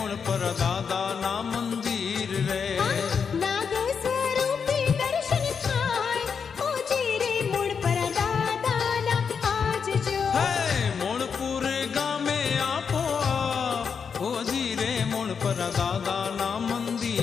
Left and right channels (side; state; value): right; quieter; 6.3 dB